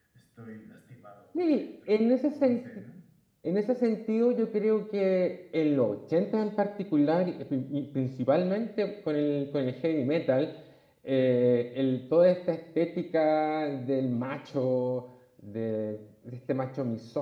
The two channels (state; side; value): identical; both; correlation 1.00